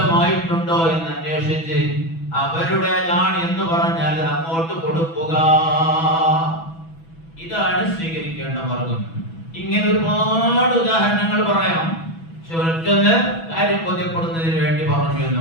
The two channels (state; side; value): late; right; 6.1 ms